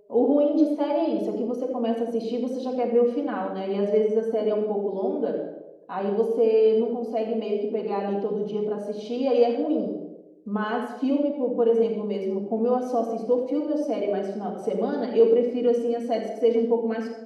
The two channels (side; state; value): both; identical; correlation 1.00